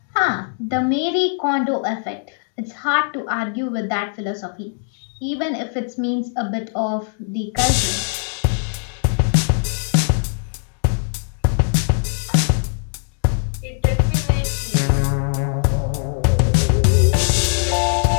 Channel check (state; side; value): silent; right; digital silence